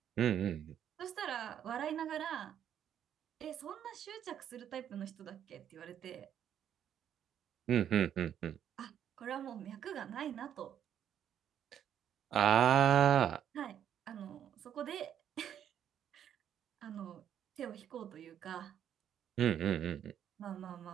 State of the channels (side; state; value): left; quieter; 9.7 dB